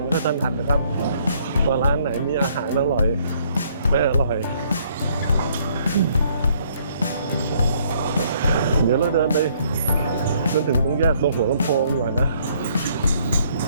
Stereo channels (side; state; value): both; inverted; correlation -0.65